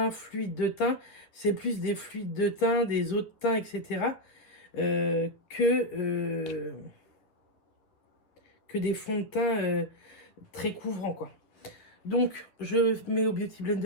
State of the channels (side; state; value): right; late; 9.9 ms